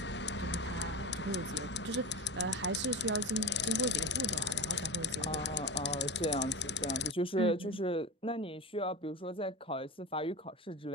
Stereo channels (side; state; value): both; normal; correlation 0.25